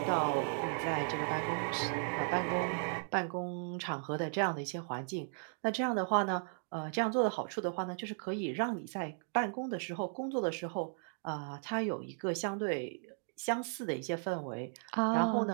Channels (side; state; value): left; silent; 54 dB below the other